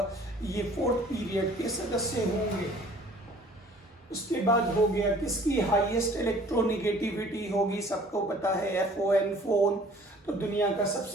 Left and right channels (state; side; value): normal; both; correlation 0.52